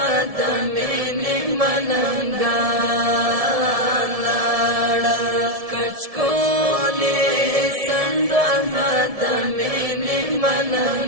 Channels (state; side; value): late; left; 1.7 ms